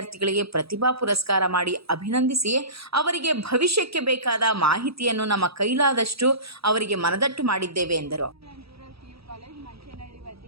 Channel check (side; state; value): left; late; 0.77 ms